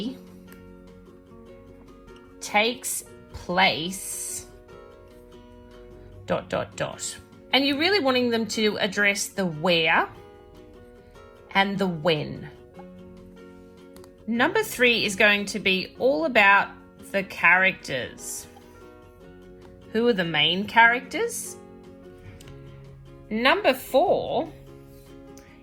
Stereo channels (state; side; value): identical; both; correlation 1.00